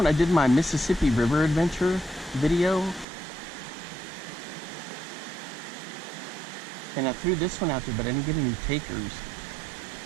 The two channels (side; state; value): left; drops out; at 3.1 s